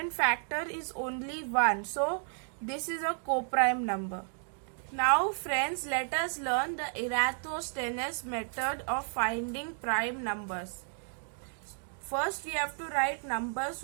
factor is only 1. So this is a co-prime number. Now friends, let us learn the Eratosthenes method of finding prime numbers. First we have to write numbers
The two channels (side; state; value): left; silent; 56 dB below the other